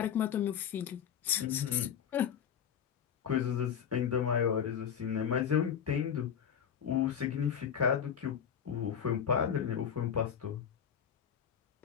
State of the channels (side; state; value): right; quieter; 8.3 dB